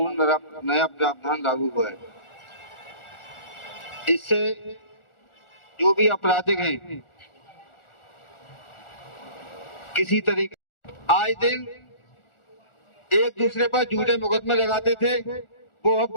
नया प्रावधान लागू हुआ है। इससे जो भी आपराधिक हैं, किसी तरीके आज दिन एक दूसरे पर झूठे मुकदमे लगाते थे, वो अब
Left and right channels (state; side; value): late; right; 1.4 ms